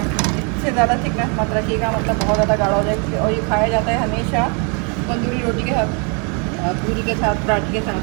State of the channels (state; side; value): quieter; left; 35.9 dB